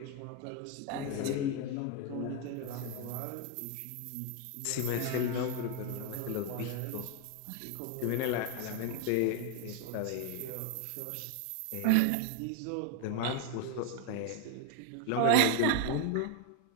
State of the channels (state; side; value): different; both; correlation 0.01